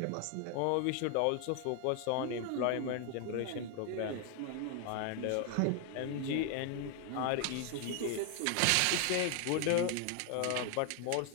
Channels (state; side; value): different; both; correlation 0.00